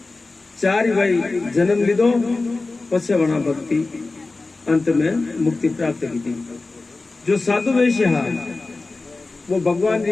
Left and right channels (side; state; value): right; quieter; 3.5 dB